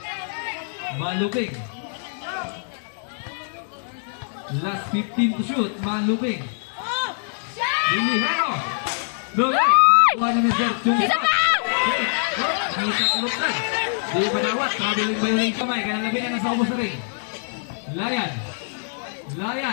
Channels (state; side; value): silent; right; digital silence